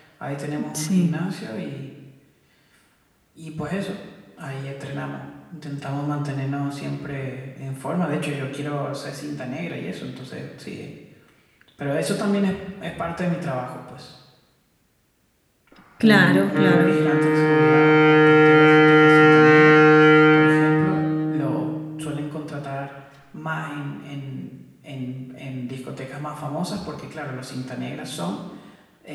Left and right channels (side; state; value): both; identical; correlation 1.00